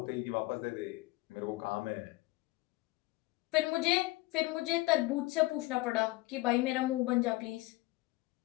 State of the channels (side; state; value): right; quieter; 20.7 dB